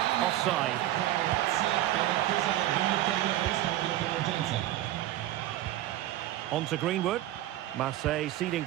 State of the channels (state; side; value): quieter; left; 14.2 dB